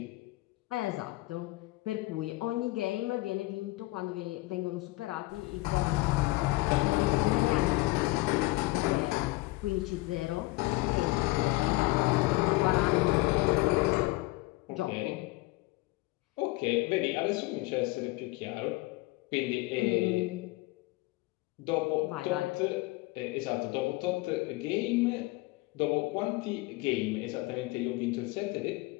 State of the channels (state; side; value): quieter; right; 21.5 dB